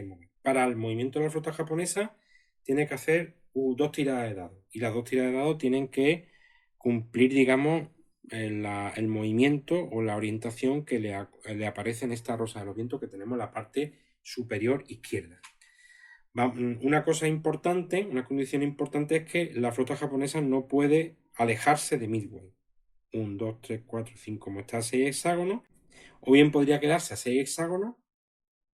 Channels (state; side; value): identical; both; correlation 1.00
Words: mover. Para el movimiento de la flota japonesa tiene que hacer 2 tiradas de dados. Y las 2 tiradas de dados tienen que cumplir, digamos, el movimiento o la orientación que le aparece en esta rosa de los vientos que tenemos en la parte superior izquierda. Una cosa importante, una condición importante es que la flota japonesa no puede alejarse de Midway. 1, 2, 3, 4, 5, como está a 6 hexágonos, o bien podría quedarse a 6 hexágonos,